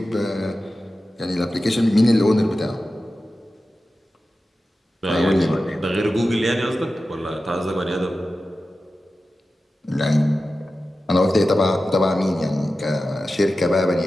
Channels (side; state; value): both; normal; correlation 0.94